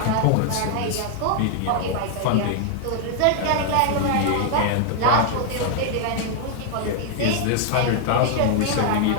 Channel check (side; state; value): both; different; correlation 0.00